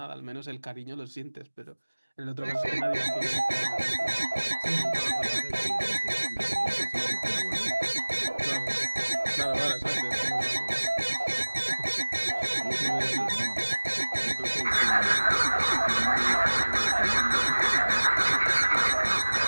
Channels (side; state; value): both; inverted; correlation -1.00